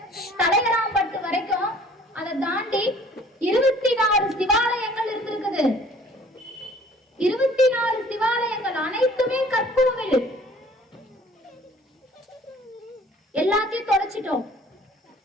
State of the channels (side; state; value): both; normal; correlation 0.53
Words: தலையராம்பட்டு வரைக்கும் அதை தாண்டி 24 சிவாலயங்கள் இருந்திருக்குது. 24 சிவாலயங்கள் அனைத்துமே கற்கோவில். எல்லாத்தையும் தொலைச்சிட்டோம்.